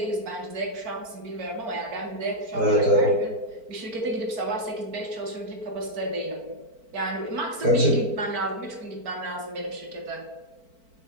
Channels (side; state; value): left; late; 4.5 ms